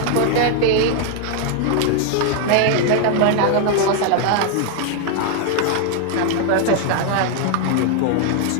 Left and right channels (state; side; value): different; both; correlation 0.00